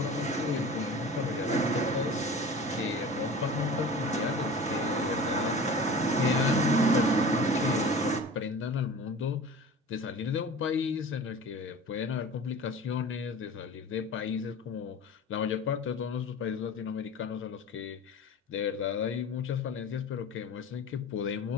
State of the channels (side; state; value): both; normal; correlation 0.38